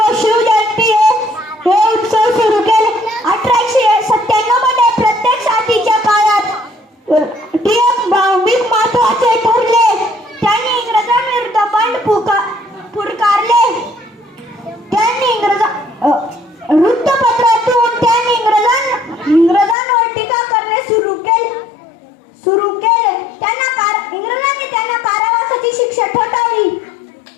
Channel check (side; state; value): right; drops out; at 19.8 s